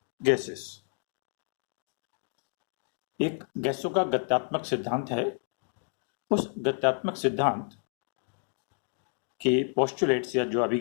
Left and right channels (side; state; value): right; silent; 58 dB below the other